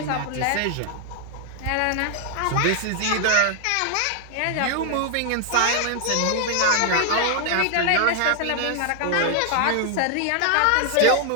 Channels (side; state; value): both; different; correlation 0.00